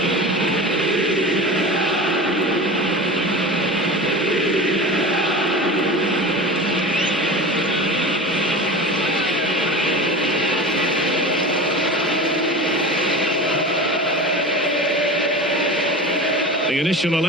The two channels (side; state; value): both; normal; correlation 0.32